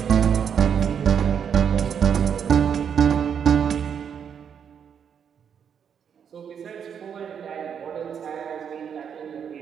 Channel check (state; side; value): quieter; left; 7.7 dB